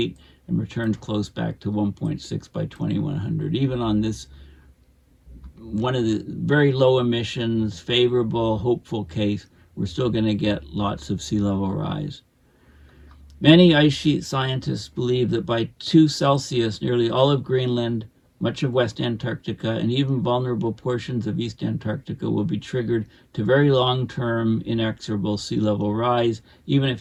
and returns close back to 1.6 by 2100, even on this one of the very low emissions, favorable, hopeful case, we're still going to get lots of sea level rise. Many ice sheet scientists believe that by 2 Celsius, nearly all of Greenland, much of West Antarctica, and even vulnerable portions of East Antarctica will be triggered to very long-term inexorable sea level rise, even if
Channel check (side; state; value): both; identical; correlation 1.00